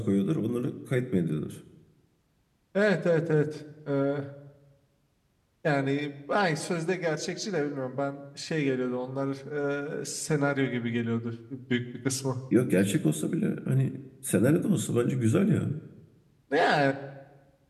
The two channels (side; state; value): both; identical; correlation 1.00